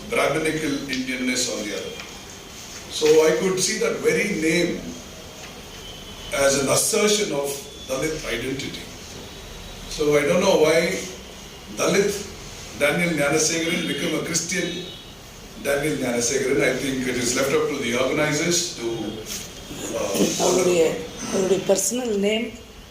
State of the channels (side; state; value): both; identical; correlation 1.00